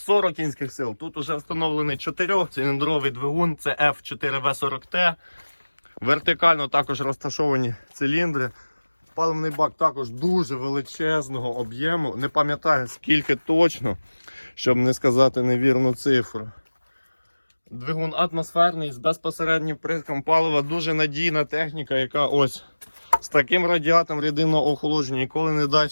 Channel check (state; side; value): inverted; both; correlation -1.00